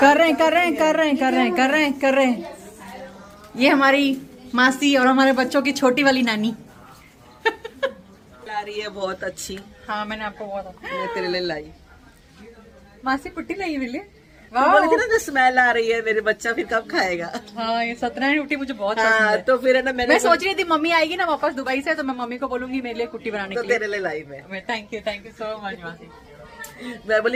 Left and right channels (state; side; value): identical; both; correlation 1.00